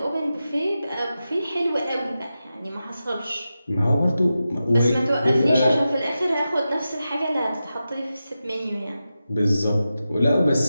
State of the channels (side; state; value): both; inverted; correlation -0.92